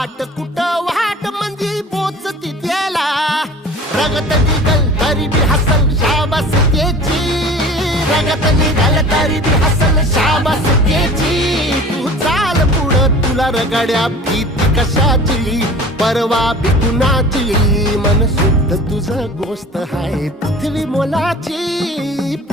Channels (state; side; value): normal; both; correlation 0.42